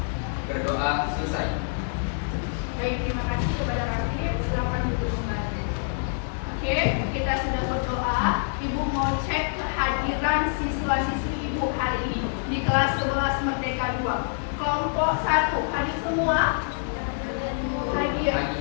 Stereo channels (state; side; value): silent; right; 61 dB below the other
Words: Berdoa selesai. Baik, terima kasih kepada Raffi. Silakan duduk kembali. Oke, kita sudah berdoa. Ibu mau cek kehadiran siswa-siswi Ibu hari ini di kelas 11 Merdeka 2. Kelompok 1 hadir semua? Hadir.